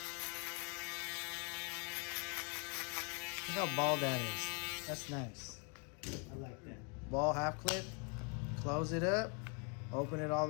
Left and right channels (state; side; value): quieter; right; 36.8 dB